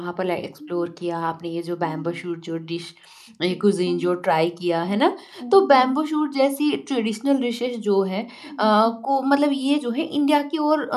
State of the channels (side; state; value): both; identical; correlation 1.00